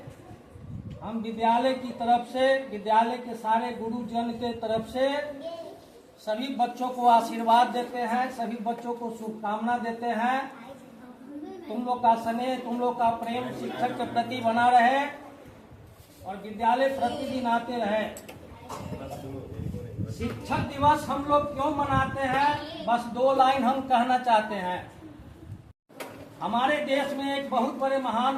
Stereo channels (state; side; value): identical; both; correlation 1.00